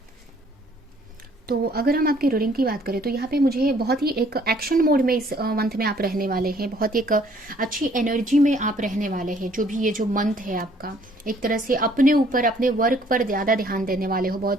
तो अगर हम आपकी रीडिंग की बात करें तो यहाँ पे मुझे बहुत ही एक एक्शन मोड में इस मंथ में आप रहने वाले हैं। बहुत ही एक अच्छी एनर्जी में आप रहने वाले हैं। जो भी ये जो मंथ है आपका, एक तरह से अपने ऊपर, अपने वर्क पर ज़्यादा ध्यान देने वाले हो।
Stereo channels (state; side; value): normal; both; correlation 0.61